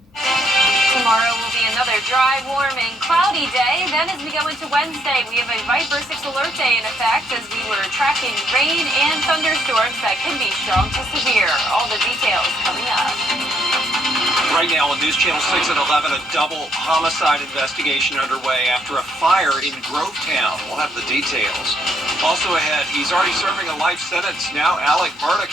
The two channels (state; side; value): normal; both; correlation 0.71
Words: Tomorrow will be another dry, warm, and cloudy day. Then as we go into Wednesday, we have a Viper 6 alert day in effect as we were tracking rain and thunderstorms that can be strong to severe. All the details coming up. Right now on News Channel 6 at 11, a double homicide investigation underway after a fire in Grovetown. We'll have the details. Also ahead, he's already serving a life sentence. Now Alec Murdoch